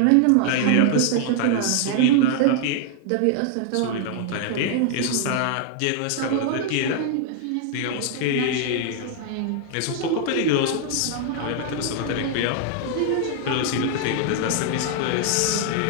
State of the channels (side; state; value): both; different; correlation 0.00